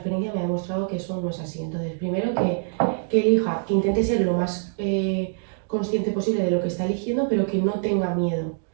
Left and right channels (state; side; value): silent; left; digital silence